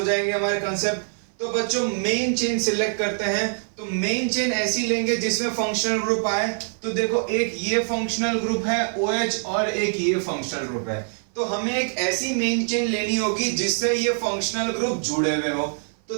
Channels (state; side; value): silent; left; 58 dB below the other